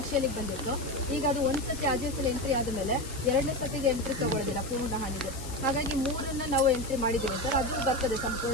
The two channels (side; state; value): left; noise; hiss, 13 dB below the sound